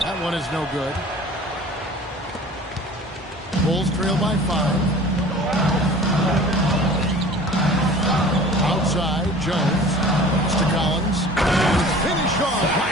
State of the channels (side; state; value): both; normal; correlation 0.44